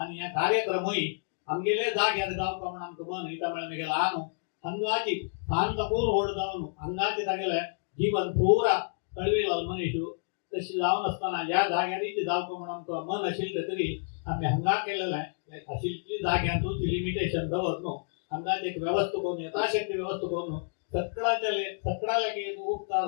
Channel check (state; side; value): silent; right; digital silence